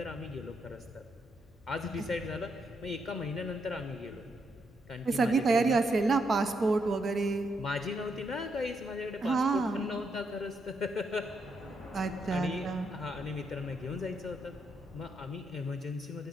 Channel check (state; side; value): normal; both; correlation 0.79